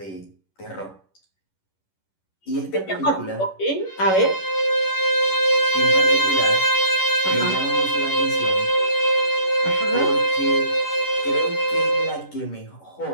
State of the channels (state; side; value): late; right; 11 ms